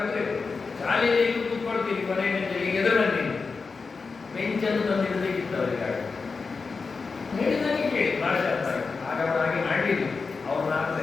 ಶಾಲೆಯಲ್ಲಿ ಈಗ ಕೂತ್ಕೊಳ್ತೀವಿ, ಕೊನೆಯ ಬೆಂಚಲ್ಲಿ ಈಗ ಎದುರು ಬನ್ನಿ ಬೆಂಚನ್ನು ತಂದಿಡಬೇಕಿತ್ತು ಅವರಿಗೆ. ಹೇಳಿದಾಗೆ ಕೇಳಿ ಭಾಷೆ ಅರ್ಥ ಆಯ್ತು. ಆಗ ಅವರು ಹಾಗೆ ಮಾಡಲಿಲ್ಲ, ಅವ್ರು ಅರ್ಥ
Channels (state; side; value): quieter; right; 4.6 dB